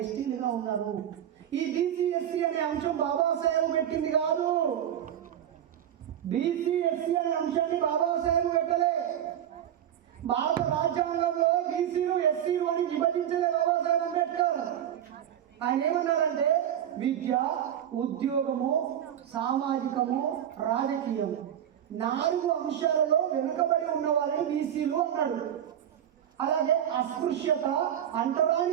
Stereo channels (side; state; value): left; quieter; 10.3 dB